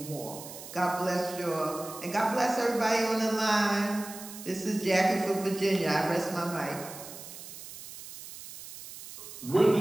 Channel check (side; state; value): right; noise; hiss, 13 dB below the sound